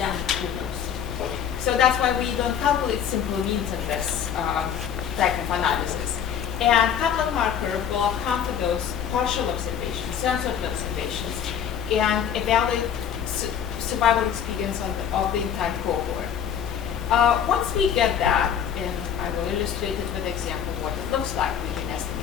who knows. So that's why we don't calculate simple means in this type of analysis. And Kaplan-Meier curve will account for those partial observations, censored observations, and evaluate survival experience of the entire cohort. Once we get that, and I will illustrate it with an example of what it looks like, we can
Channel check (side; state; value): right; quieter; 8.5 dB